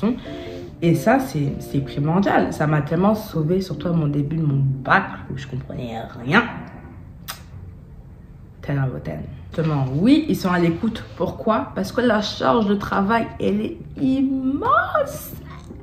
Et ça, c'est primordial. Ça m'a tellement sauvée, surtout à mon début de mon bac où je comprenais rien. 10 out of 10. Justement, oui, ils sont à l'écoute. Pourquoi? Parce que la charge de travail, elle est immense.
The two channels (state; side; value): identical; both; correlation 1.00